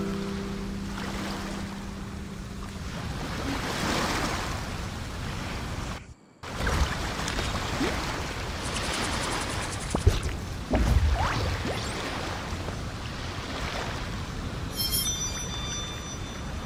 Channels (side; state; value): both; identical; correlation 1.00